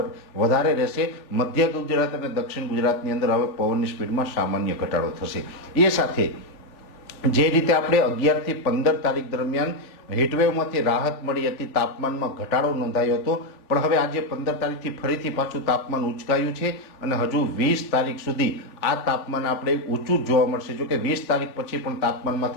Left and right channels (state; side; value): late; right; 3.4 ms